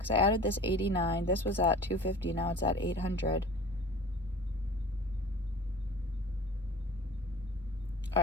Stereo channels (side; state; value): both; normal; correlation 0.41